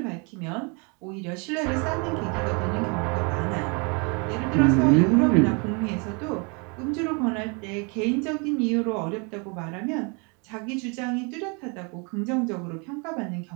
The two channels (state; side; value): quieter; left; 33.1 dB